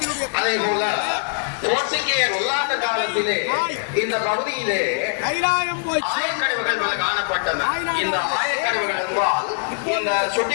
அதே போல போர்ச்சுகேயர் ஒல்லாந்த காலத்திலே இந்த பகுதியிலே ஆயக்கடவுகள் பல காணப்பட்டன. இந்த ஆயக்கடவுகள் என்றால் இந்த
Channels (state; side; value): silent; right; digital silence